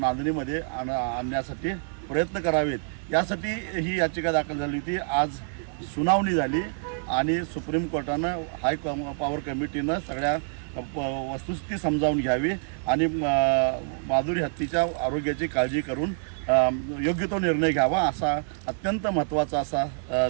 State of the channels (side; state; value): left; silent; 60 dB below the other